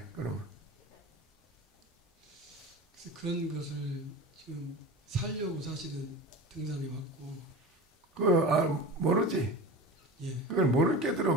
그러면 그런 것을 지금 살려고 사실은 등산에 왔고 모르지. 예. 그걸 모르는 게들어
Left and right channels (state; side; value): normal; both; correlation 0.32